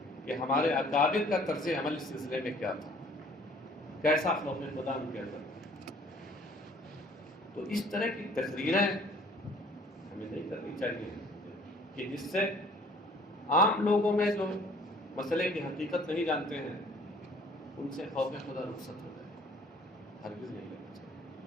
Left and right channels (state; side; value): normal; both; correlation 0.55